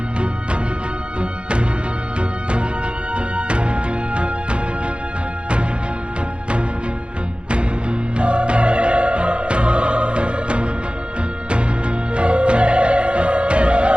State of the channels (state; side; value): late; left; 0.058 ms